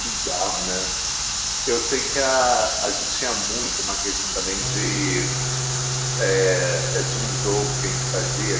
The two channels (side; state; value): both; identical; correlation 1.00